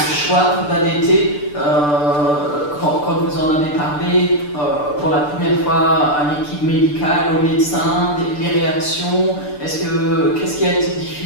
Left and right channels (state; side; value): late; right; 6.8 ms